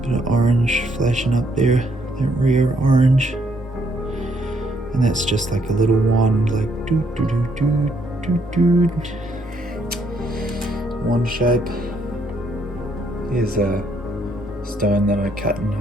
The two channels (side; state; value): both; normal; correlation 0.70